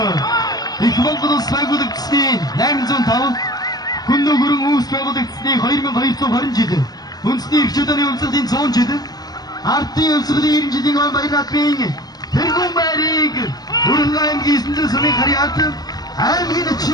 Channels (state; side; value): late; right; 0.19 ms